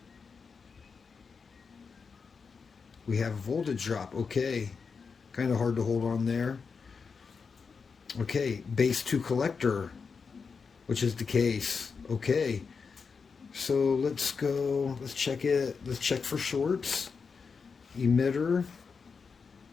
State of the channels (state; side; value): quieter; right; 5.4 dB